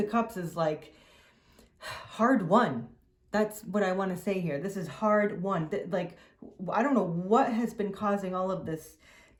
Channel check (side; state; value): both; identical; correlation 1.00